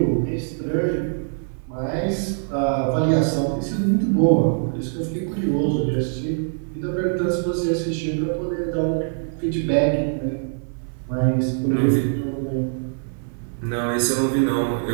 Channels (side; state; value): left; silent; 59 dB below the other